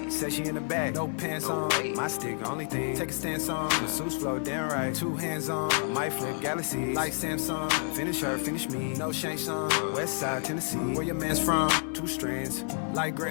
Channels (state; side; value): silent; right; 58 dB below the other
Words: Said she in the back, no pants on. My stick, only thing. Take a stance on. Masseuse flow, damn right. 2 hands on. My flip galaxy like Samsung. Finish her, finish me. No shank song. West side Tennessee. Where your man's from? 2 strands like